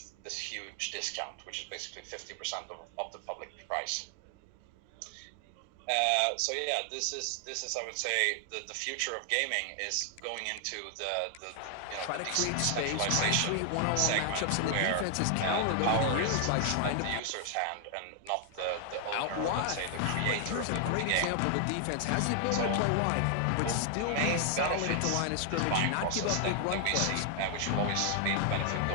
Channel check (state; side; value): different; both; correlation 0.00